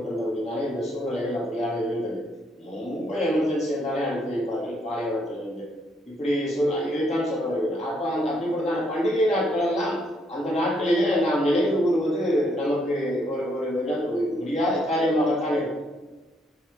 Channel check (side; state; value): both; normal; correlation 0.72